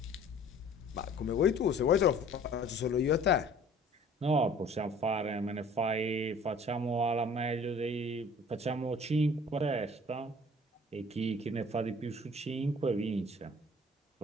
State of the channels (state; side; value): normal; both; correlation 0.50